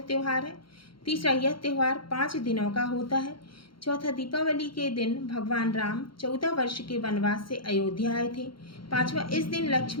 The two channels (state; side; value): late; right; 0.73 ms